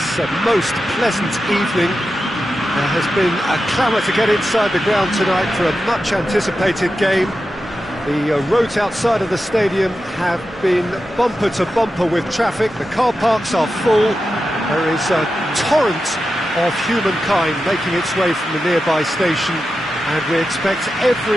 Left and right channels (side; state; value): both; normal; correlation 0.91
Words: most pleasant evening. There has been a clamour to get inside the ground tonight for a much-anticipated game. The roads outside of the stadium have been bumper to bumper with traffic. The car parks are full. There is a torrent of humankind making its way from the nearby station, and we expect